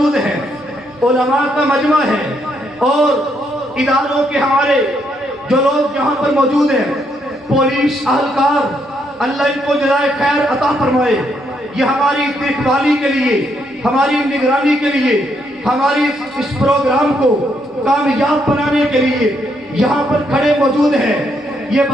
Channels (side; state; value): both; normal; correlation 0.75